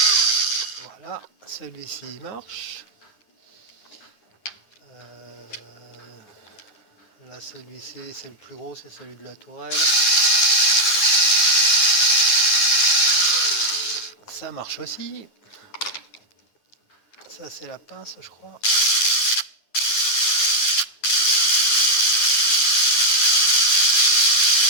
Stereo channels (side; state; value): right; late; 9.7 ms